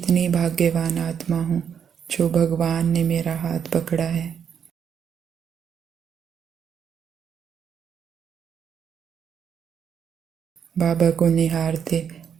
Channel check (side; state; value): left; quieter; 7.8 dB